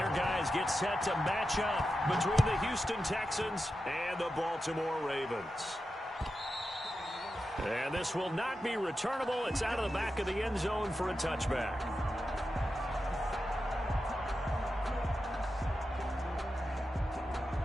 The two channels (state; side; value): normal; both; correlation 0.90